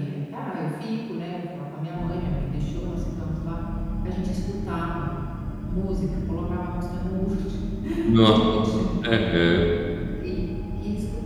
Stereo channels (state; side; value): identical; both; correlation 1.00